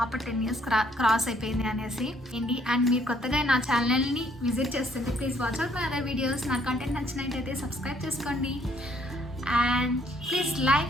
10 years క్రాస్ అయిపోయింది అనేసి. అండ్ మీరు కొత్తగా నా ఛానల్ని విజిట్ చేస్తుంటే please watch out my other videos. నా కంటెంట్ నచ్చినట్టయితే సబ్స్క్రైబ్ చేసుకోండి. And please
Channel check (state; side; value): normal; both; correlation 0.66